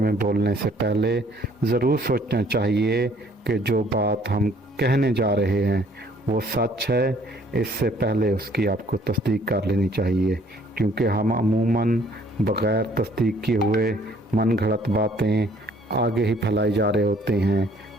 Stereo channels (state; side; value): normal; both; correlation 0.60